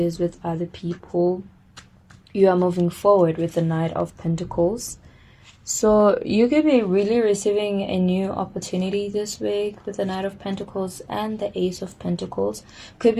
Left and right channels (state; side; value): identical; both; correlation 1.00